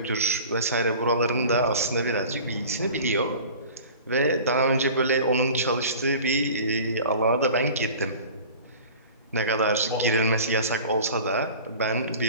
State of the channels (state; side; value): inverted; both; correlation -0.41